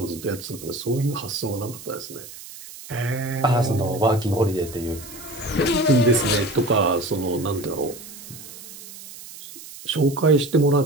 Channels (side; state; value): right; noise; hiss, 15 dB below the sound